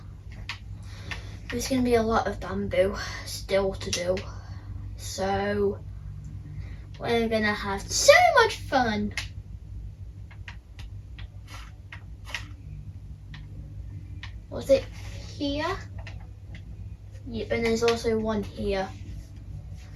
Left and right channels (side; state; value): both; identical; correlation 1.00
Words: There's going to be a lot of bamboo still to do. So, we're going to have so much fun. Was it here? Yep, and there's also one here.